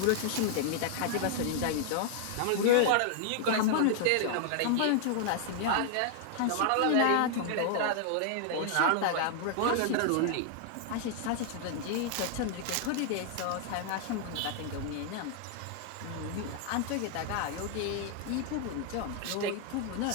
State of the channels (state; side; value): different; both; correlation 0.00